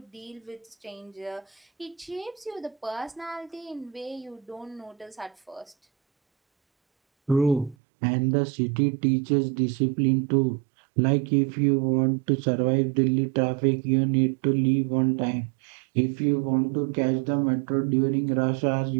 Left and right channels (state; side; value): drops out; left; at 7.8 s